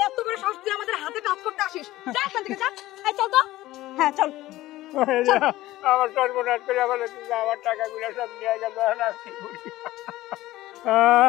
এত বড় সাহস, তুই আমাদের হাতে কাজ করতে আসিস? যা এখান থেকে, যা। এই চল তো। হ্যাঁ চল। আমার সর্বনাশ করে আমার টাকাগুলো সব নিয়ে গেল।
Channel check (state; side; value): quieter; right; 16.4 dB